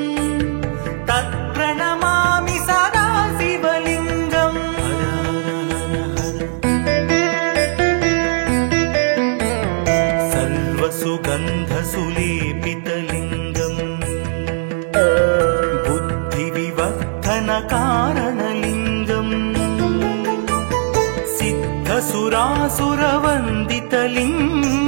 तत्प्रणमामि सदा शिवलिङ्गम् सर्वसुगन्धसुलेपितलिङ्गम् बुद्धिविवर्धनकारणलिङ्गम्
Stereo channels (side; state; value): left; silent; 67 dB below the other